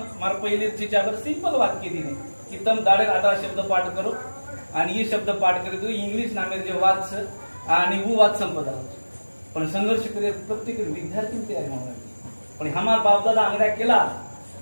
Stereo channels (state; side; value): inverted; both; correlation -1.00